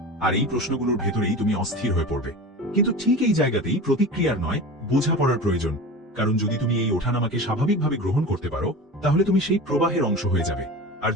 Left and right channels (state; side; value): normal; both; correlation 0.31